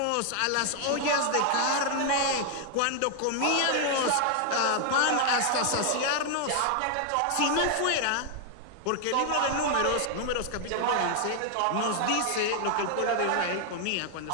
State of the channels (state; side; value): different; both; correlation 0.00